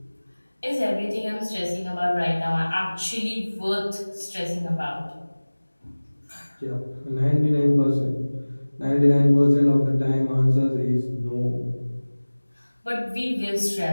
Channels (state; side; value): inverted; both; correlation -1.00